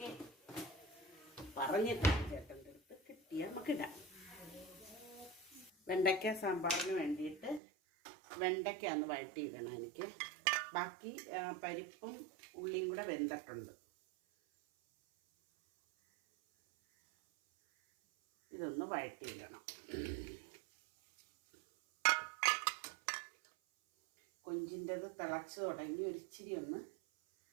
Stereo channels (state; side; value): drops out; left; at 7.6 s